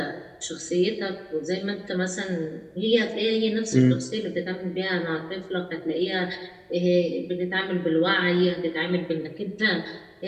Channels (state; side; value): identical; both; correlation 1.00